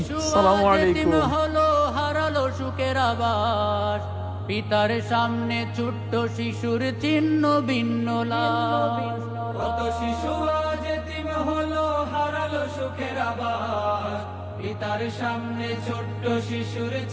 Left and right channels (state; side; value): identical; both; correlation 1.00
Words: আসসালামু আলাইকুম। হলো হারালো সুখের আবাস, পিতার সামনে ছোট্ট শিশুর চিহ্ন ভিন্ন লাশ। কত শিশু আজ এতিম হলো হারালো সুখের আবাস, পিতার সামনে ছোট্ট শিশুর